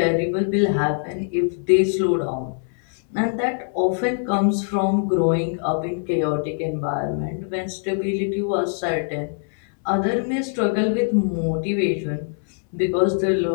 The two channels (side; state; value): right; silent; 64 dB below the other